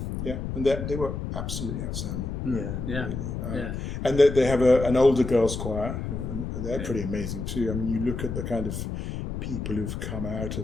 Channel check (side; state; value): left; noise; rumble, 5 dB below the sound